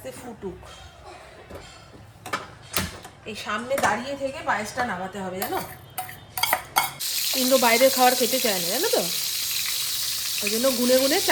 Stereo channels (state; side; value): identical; both; correlation 1.00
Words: ফুটুক। এই সামনে দাঁড়িয়ে থেকে পায়েসটা নামাতে হবে, জানো। ইন্দ্র বাইরের খাবার খেতে চায় না, জানো তো। ওই জন্য গুনে গুনে